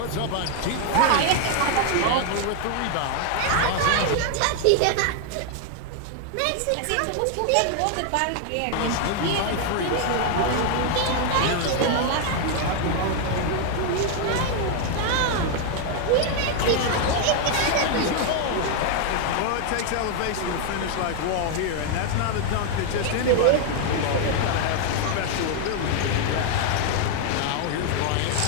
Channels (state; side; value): different; both; correlation 0.00